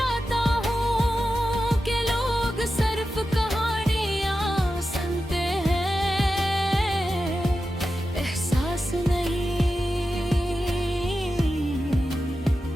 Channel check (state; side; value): normal; both; correlation 0.91